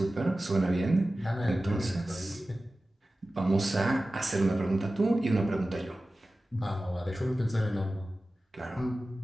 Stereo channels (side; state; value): both; normal; correlation 0.95